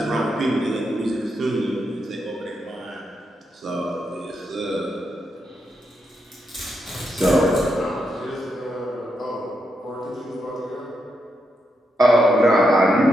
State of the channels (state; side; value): normal; both; correlation 0.82